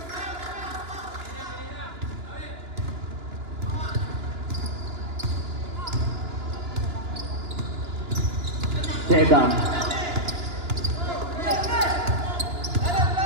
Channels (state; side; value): late; left; 2.9 ms